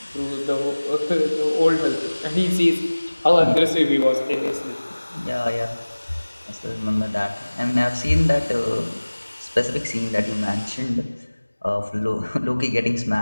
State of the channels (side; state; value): both; inverted; correlation -1.00